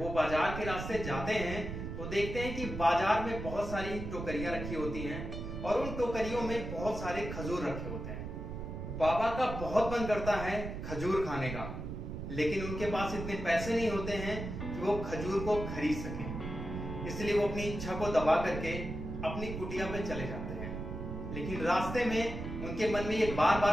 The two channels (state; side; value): noise; right; rumble, 6 dB below the sound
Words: वो बाजार के रास्ते जाते हैं तो देखते हैं कि बाजार में बहुत सारी टोकरियां रखी होती हैं और उन टोकरियों में बहुत सारे खजूर रखे होते हैं। बाबा का बहुत मन करता है खजूर खाने का, लेकिन उनके पास इतने पैसे नहीं होते हैं कि वो खजूर को खरीद सके। इसलिए वो अपनी इच्छा को दबा करके अपनी कुटिया पे चले जाते हैं। लेकिन रास्ते में उनके मन में ये बार